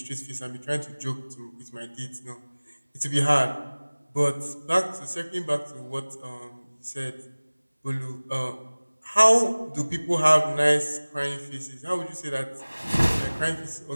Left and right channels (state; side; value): inverted; both; correlation -1.00